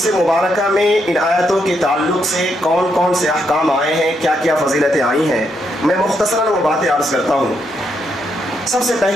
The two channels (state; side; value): normal; both; correlation 0.78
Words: مبارکہ میں ان آیتوں کے تعلق سے کون کون سے احکام آئے ہیں، کیا کیا فضیلتیں آئی ہیں، میں مختصراً وہ باتیں عرض کرتا ہوں. سب سے